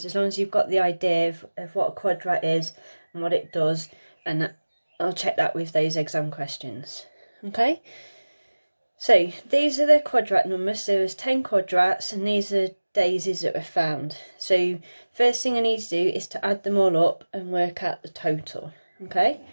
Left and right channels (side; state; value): both; inverted; correlation -1.00